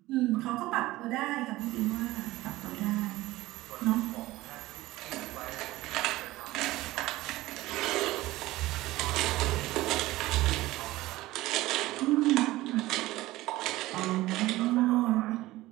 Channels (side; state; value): left; quieter; 17.7 dB